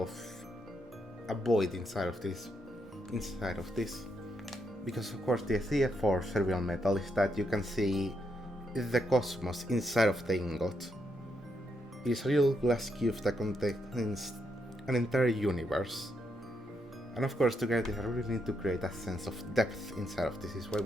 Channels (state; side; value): normal; both; correlation 0.79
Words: a void inside of this. Because of course the idea for Cerulean metal is that you can see the cosmos inside of the ingot. It is a real glass cube that contains an entire universe. And of course to get this I really need to create a sense of depth inside of this. This is why